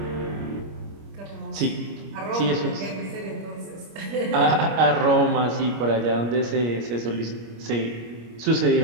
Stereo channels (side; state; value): left; late; 25 ms